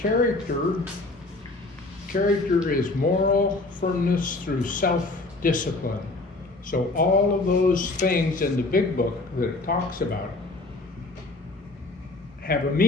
is moral firmness through self-discipline. So all of those things in the big book that it talks about have a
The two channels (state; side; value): quieter; right; 3.1 dB